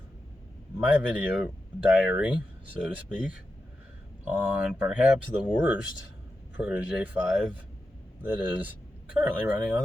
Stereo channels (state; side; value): normal; both; correlation 0.89